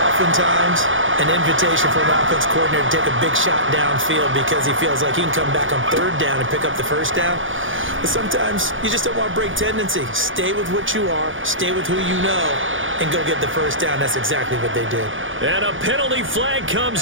oftentimes an invitation for an offense coordinator to take a big shot downfield because he feels like he can come back on 3rd down and pick up the first down. But sometimes you just don't want to break tendency. Stay with what you are, stay with who you know, and go get the first down. That's exactly what they did. And a penalty flag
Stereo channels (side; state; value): left; late; 0.57 ms